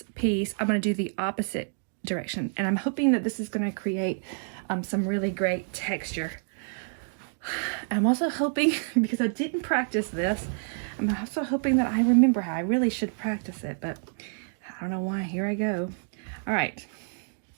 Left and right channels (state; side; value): silent; left; 59 dB below the other